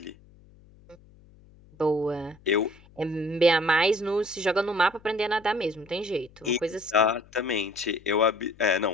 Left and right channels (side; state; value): left; noise; hum, 26 dB below the sound